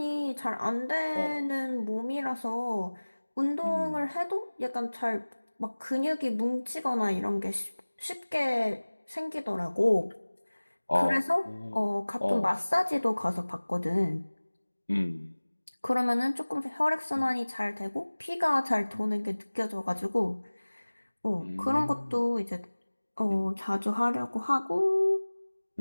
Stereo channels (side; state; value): both; inverted; correlation -1.00